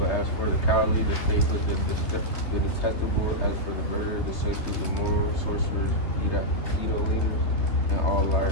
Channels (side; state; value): right; late; 3.3 ms